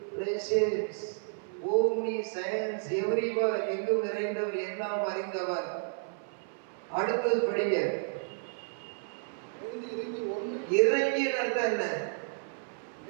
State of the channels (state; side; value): silent; left; 57 dB below the other